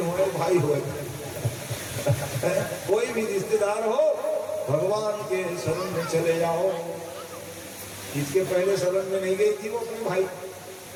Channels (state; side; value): identical; both; correlation 1.00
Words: भाई हो कोई भी रिश्तेदार हो, भगवान के शरण में चले जाओ। इसके पहले शरण में नहीं गई थी वो अपने भाई।